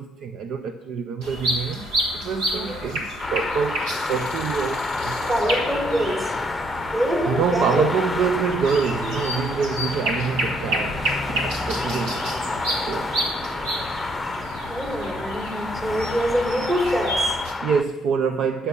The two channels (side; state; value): both; normal; correlation 0.70